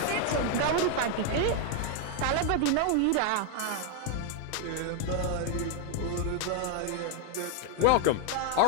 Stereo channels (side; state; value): both; different; correlation 0.01